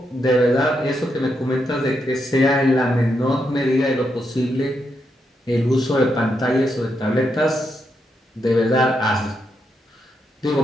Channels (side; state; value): both; normal; correlation 0.82